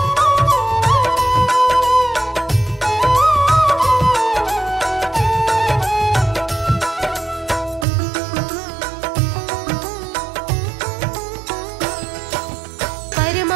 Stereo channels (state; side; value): drops out; left; at 7.9 s